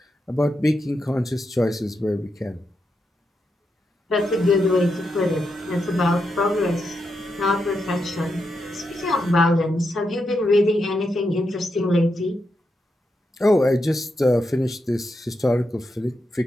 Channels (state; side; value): normal; both; correlation 0.85